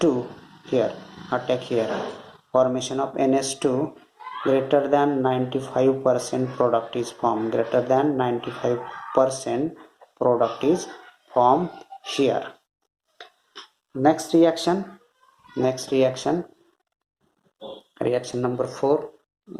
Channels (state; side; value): identical; both; correlation 1.00